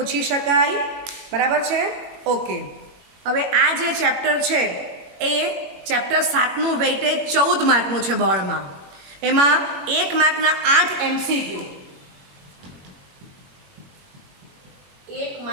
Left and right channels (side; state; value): left; late; 21 ms